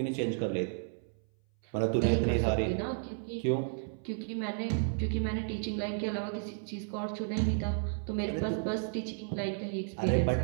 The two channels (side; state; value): left; silent; 56 dB below the other